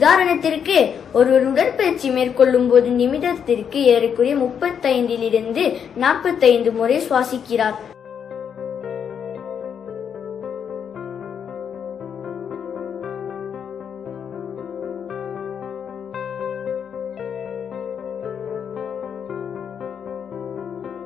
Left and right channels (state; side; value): quieter; right; 7.7 dB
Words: ஒருவர் உடற்பயிற்சி மேற்கொள்ளும் போது நிமிடத்திற்கு ஏறக்குறைய 35 to 45 முறை சுவாசிக்கிறார்.